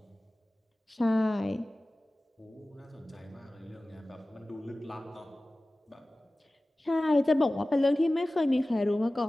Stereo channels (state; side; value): normal; both; correlation 0.97